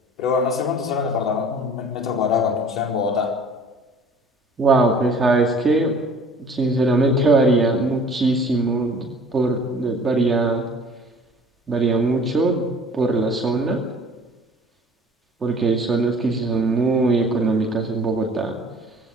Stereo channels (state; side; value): normal; both; correlation 0.49